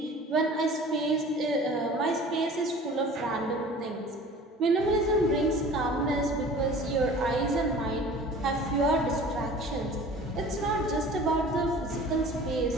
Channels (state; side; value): normal; both; correlation 0.44